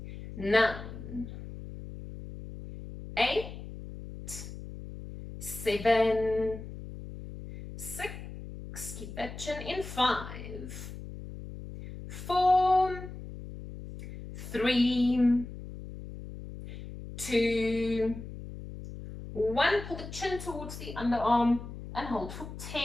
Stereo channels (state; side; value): noise; left; hum, 11 dB below the sound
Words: 9, 8, 7, 6, keep that chin in. 5, 4, 3, 2, 1. Pull the chin towards the underarm and hold for